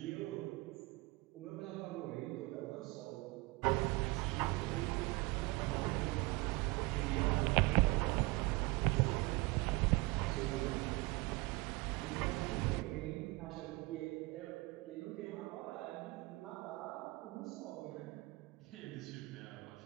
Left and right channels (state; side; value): quieter; left; 23.8 dB